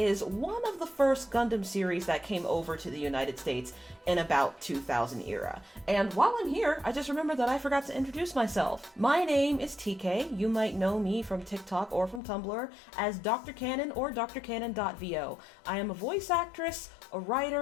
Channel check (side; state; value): right; drops out; at 12.2 s